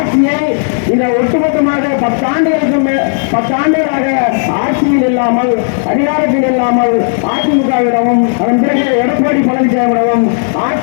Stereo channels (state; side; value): silent; right; digital silence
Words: இந்த ஒட்டுமொத்தமாக 10 ஆண்டுகளாக ஆட்சியில் இல்லாமல், அதிகாரத்தில் இல்லாமல் அதிமுகவிடமும் அதன் பிறகு எடப்பாடி பழனிசாமியிடமும்